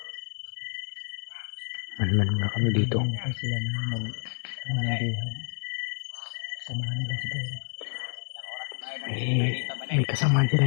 Manman muna kami dito. Hinihintay sila na manandihan. Samahan nila si Pero. May kasamaan sila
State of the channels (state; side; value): silent; right; digital silence